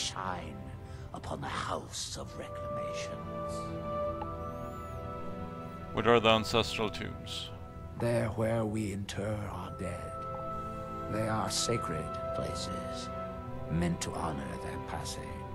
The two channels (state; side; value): identical; both; correlation 1.00